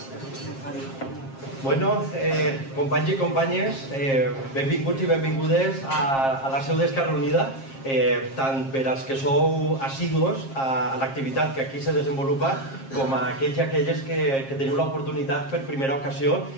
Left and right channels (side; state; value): right; late; 7.5 ms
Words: Bueno, companys i companyes, benvinguts i benvingudes a la seu d'Esquerra Unida, tant per als que sou assidus a l'activitat que aquí se desenvolupa, com a aquells i aquelles que teniu l'oportunitat per primera ocasió